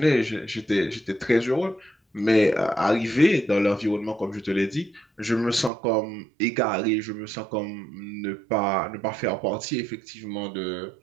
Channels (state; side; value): drops out; left; at 5.7 s